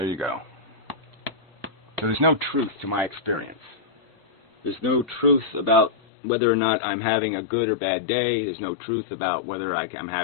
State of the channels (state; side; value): drops out; right; at 5.9 s